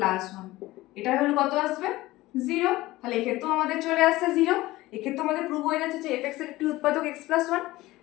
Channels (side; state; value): right; quieter; 18.2 dB